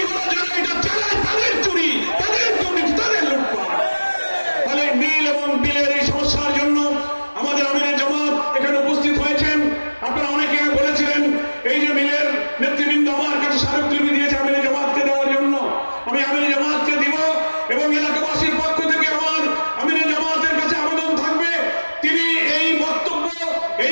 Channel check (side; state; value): both; inverted; correlation -1.00